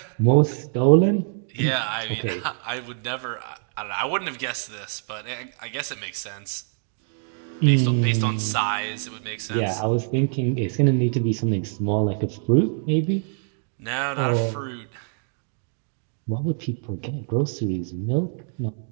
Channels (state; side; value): silent; left; digital silence